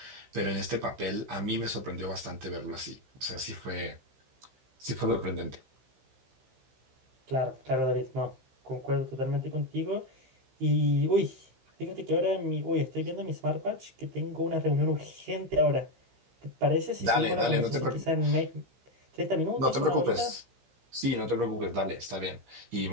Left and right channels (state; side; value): late; left; 15 ms